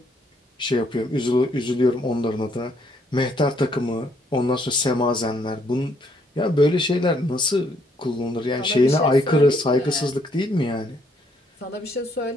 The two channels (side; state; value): both; normal; correlation 0.69